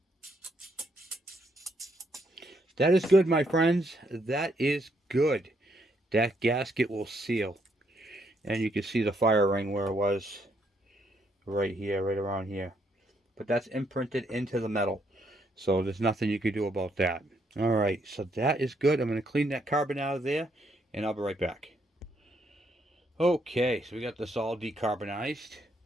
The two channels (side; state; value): both; normal; correlation 0.74